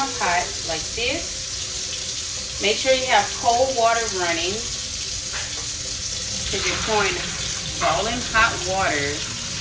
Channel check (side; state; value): both; identical; correlation 1.00